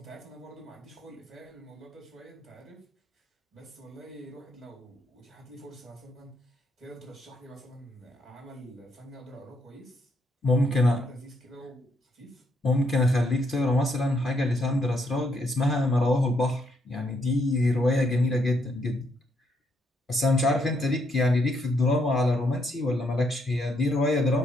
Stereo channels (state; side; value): normal; both; correlation 0.75